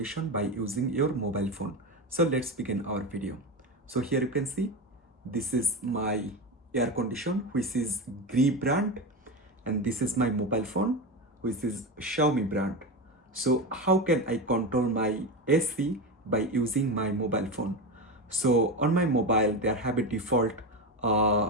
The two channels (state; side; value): normal; both; correlation 0.18